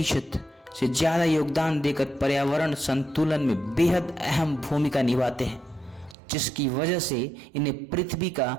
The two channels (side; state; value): left; drops out; at 6.2 s